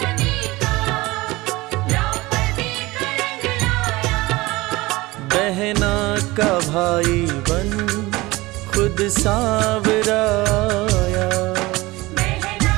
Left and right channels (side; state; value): left; quieter; 20.8 dB